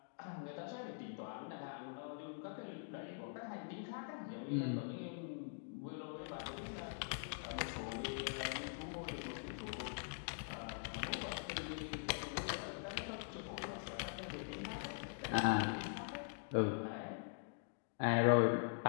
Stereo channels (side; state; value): right; silent; digital silence